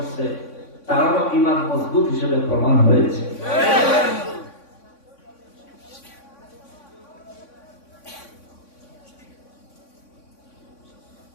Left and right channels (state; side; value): late; right; 3.6 ms